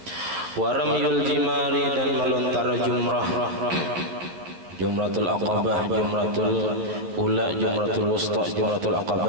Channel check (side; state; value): left; late; 12 ms